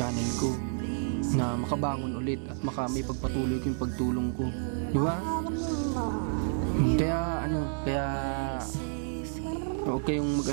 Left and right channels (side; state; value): left; silent; digital silence